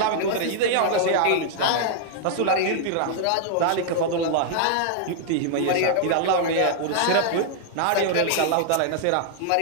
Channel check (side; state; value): both; different; correlation -0.01